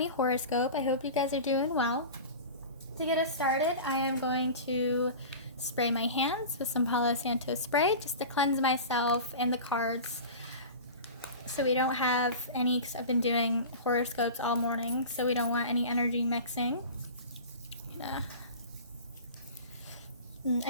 horoscope. I hope you guys are doing well. To get us started, I am going to spray my hands with some Palo Santo spray just to cleanse myself and the cards so we don't have any, because I've been doing horoscopes all morning, so we don't want any energy mixing.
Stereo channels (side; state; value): both; inverted; correlation -0.34